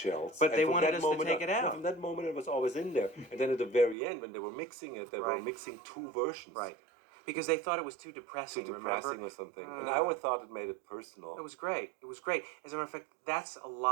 But And they from wanted that us to moment take it no, out. from that moment, it was always in there, and then at the very end, when they were mixing it, they were Right. mixing two versions. Right. Because they thought it was too Too depressing, depressing remember? or something, and I always thought it made it personal. It was great. It was great. As a matter of fact, that's a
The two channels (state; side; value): drops out; left; at 4.0 s